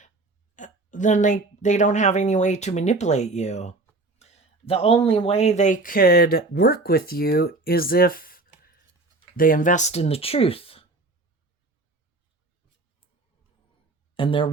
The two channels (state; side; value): quieter; left; 3.1 dB